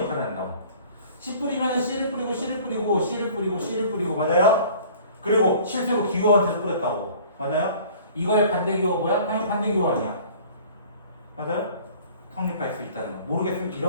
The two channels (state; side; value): inverted; both; correlation -0.49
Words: 한다고. C 뿌리면 C를 뿌리고 C를 뿌리고 C를 뿌리고 C를 뿌리고 맞아요? 그리고 실제로 기호한테 뿌렸다고. 맞아요? 이거의 반대 기호가 뭐야? 당연히 반대 기호 아니야. 맞아요? 성립할 수 있다는 거. 모르겠으면